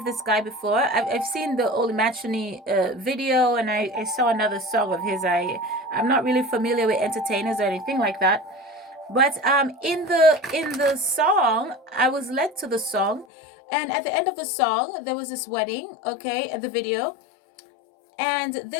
this guy before. I've seen the Holy Matrimony video, and I saw another song of his. I'm not really familiar with entertainers or anything like that. But in the song, I was led to the song, and at the end of the song, there was this wedding, okay, at the video, and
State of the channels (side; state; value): right; drops out; at 13.2 s